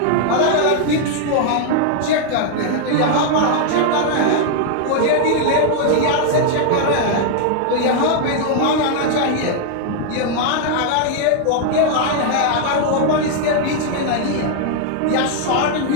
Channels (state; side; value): different; both; correlation 0.00